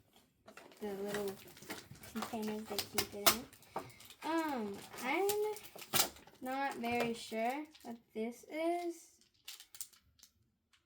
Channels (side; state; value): both; identical; correlation 1.00